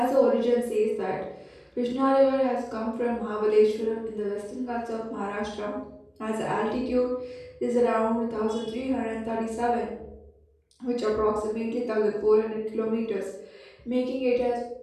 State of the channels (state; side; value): identical; both; correlation 1.00